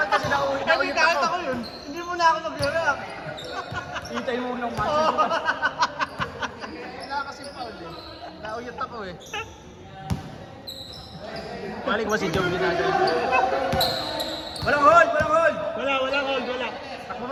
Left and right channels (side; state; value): both; identical; correlation 1.00